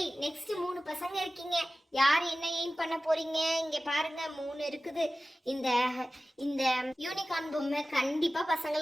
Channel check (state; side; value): normal; both; correlation 0.96